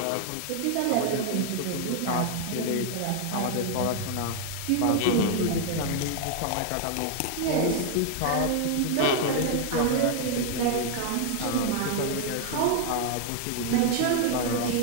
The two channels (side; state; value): both; different; correlation 0.00